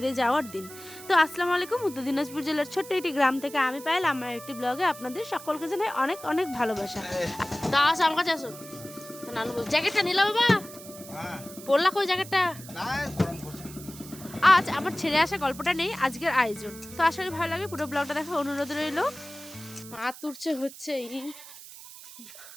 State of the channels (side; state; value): right; noise; hiss, 16 dB below the sound